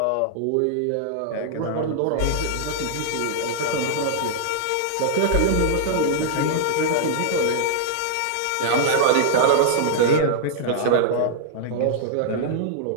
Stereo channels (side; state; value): both; different; correlation -0.01